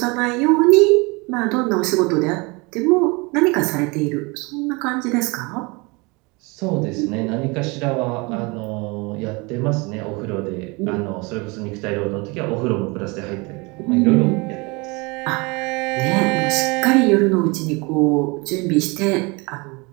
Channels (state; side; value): quieter; left; 27.4 dB